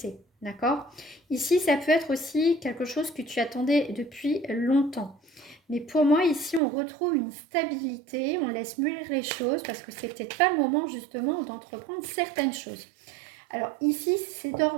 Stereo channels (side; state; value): left; drops out; at 6.6 s